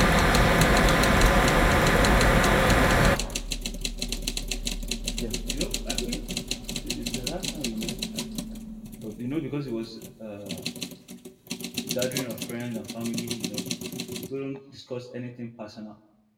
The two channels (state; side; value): identical; both; correlation 1.00